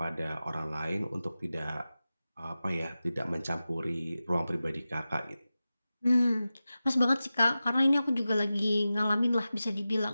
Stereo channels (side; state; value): both; inverted; correlation -0.94